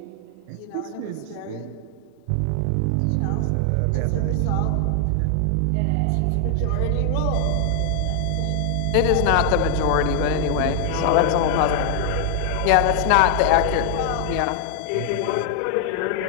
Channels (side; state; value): both; different; correlation 0.00